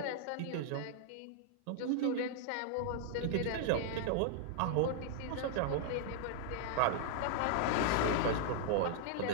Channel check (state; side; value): different; both; correlation -0.01